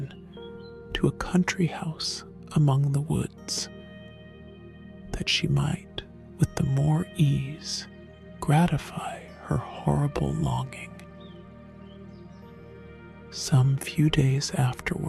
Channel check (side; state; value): both; identical; correlation 1.00